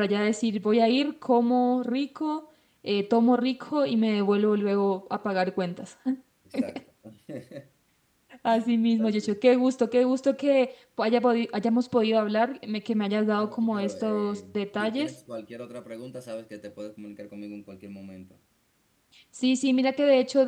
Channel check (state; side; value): identical; both; correlation 1.00